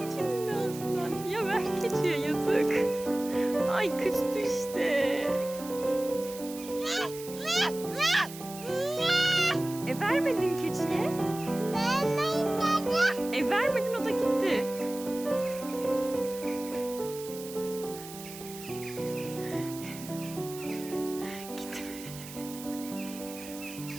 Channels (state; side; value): noise; right; hiss, 14 dB below the sound